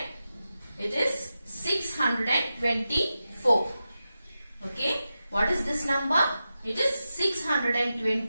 It is 624. Okay. What is this number? It is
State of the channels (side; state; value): both; inverted; correlation -0.91